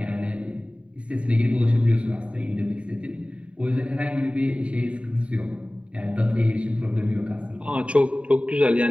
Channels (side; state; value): left; late; 0.063 ms